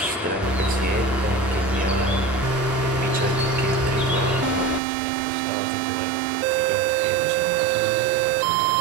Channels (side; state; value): left; drops out; at 4.8 s